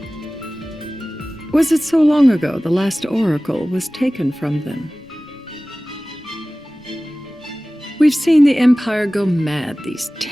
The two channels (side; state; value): both; normal; correlation 0.98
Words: Was it so long ago the last oracle was taken from them? We've seen the Empire go mad these